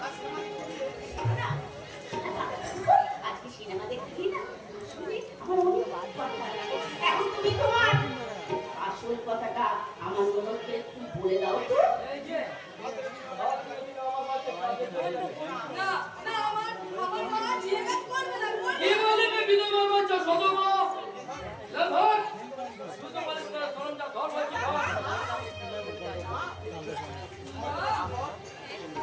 না, আজকে সিনেমা দেখতে না শুনে আমার অনেক ভালো লাগে। এখন তুমি তোমার আসল কথাটা আমার মনকে একটু বলে দাও তো। এই যে আর যদি আমার কাছে কাজে চলে যাবে। না না আমার মা যে কাজ করবে না কি বলবে বিধবা বাচ্চা সদমা লভর শুধু বলিস না সরঞ্জাম ধর হয়েছে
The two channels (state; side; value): identical; both; correlation 1.00